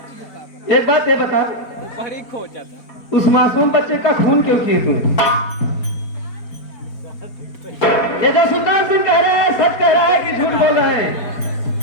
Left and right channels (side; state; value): right; late; 4.4 ms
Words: एक बात ये बता, उस मासूम बच्चे का खून क्यों किए तुम? ये जो सुल्तान सिंह कह रहा है सच कह रहा है कि झूठ बोल रहा है?